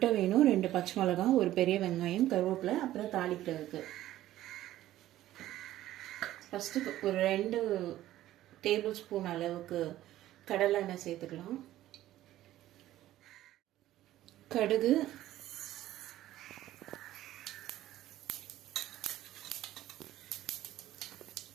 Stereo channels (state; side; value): quieter; left; 14.1 dB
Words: வேணும், 2 பச்சை மிளகாய், ஒரு பெரிய வெங்காயம், கருவேப்பிலை, அப்புறம் தாளிக்கிறதுக்கு. ஃபஸ்ட்டு ஒரு 2 டேபிள் ஸ்பூன் அளவுக்கு கடலை எண்ணெய் சேர்த்துக்கலாம். கடுகு,